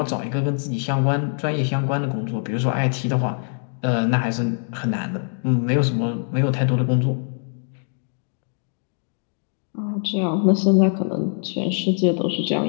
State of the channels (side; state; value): right; silent; 63 dB below the other